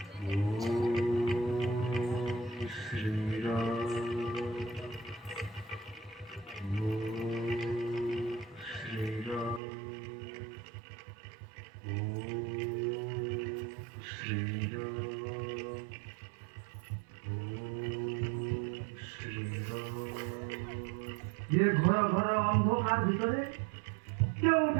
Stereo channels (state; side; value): drops out; left; at 9.6 s